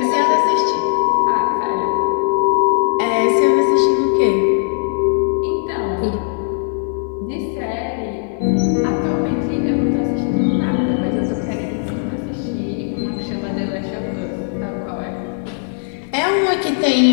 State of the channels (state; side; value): silent; right; 61 dB below the other